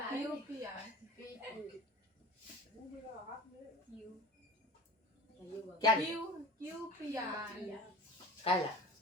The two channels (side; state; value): both; normal; correlation 0.36